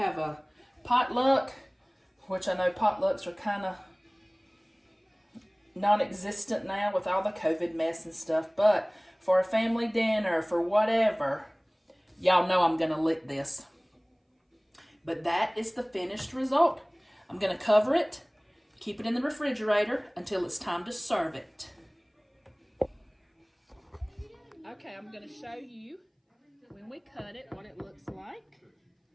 a potluck, which I know potlucks are kind of non-existent now with all the COVID mess and stuff, but for a family dinner, for whatever, y'all know I'm going to lick this. But that is the finished result. I'm going to cover it Keep it in the refrigerator until it's time to serve it. Okay, I'm going to show you when we cut it what it looks like.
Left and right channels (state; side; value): identical; both; correlation 1.00